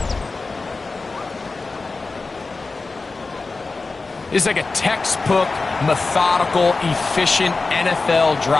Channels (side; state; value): right; quieter; 3.8 dB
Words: This is like a textbook, methodical, efficient NFL